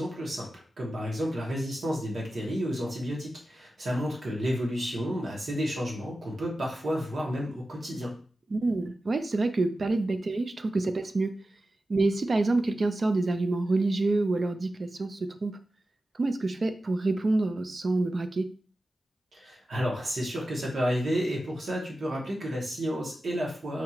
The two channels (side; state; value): both; normal; correlation 0.93